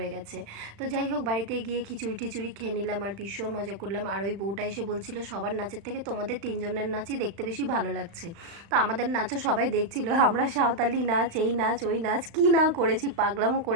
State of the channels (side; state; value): left; late; 35 ms